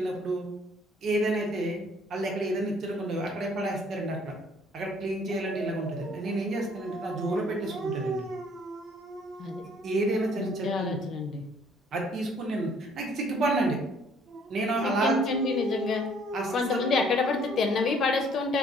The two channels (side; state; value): both; normal; correlation 0.60